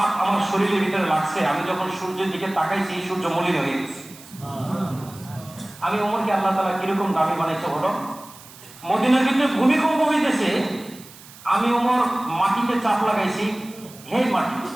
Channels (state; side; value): noise; right; hiss, 20 dB below the sound